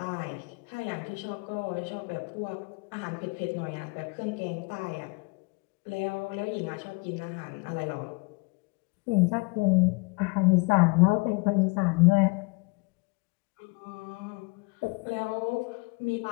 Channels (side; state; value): right; quieter; 28.6 dB